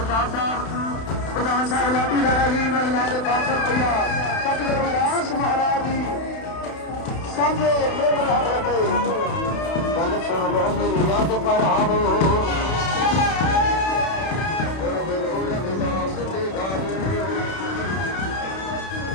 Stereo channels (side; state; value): right; late; 31 ms